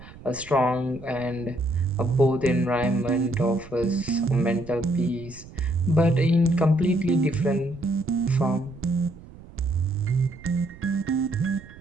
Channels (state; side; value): noise; right; rumble, 18 dB below the sound